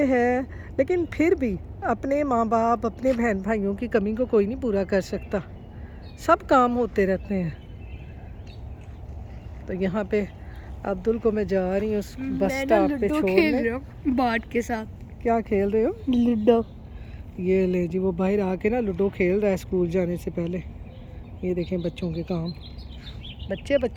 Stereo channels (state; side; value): identical; both; correlation 1.00